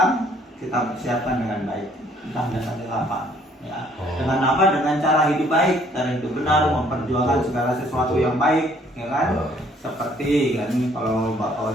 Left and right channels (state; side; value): normal; both; correlation 0.62